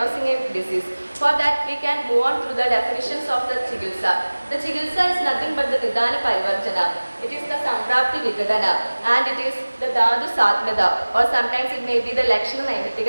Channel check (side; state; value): both; inverted; correlation -1.00